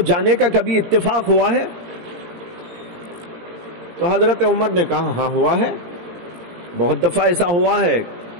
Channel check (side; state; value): left; late; 18 ms